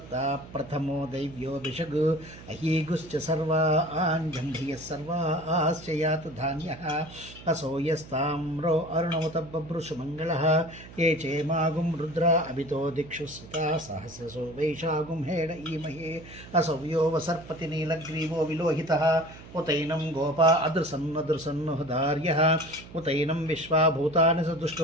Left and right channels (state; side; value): noise; right; hum, 17 dB below the sound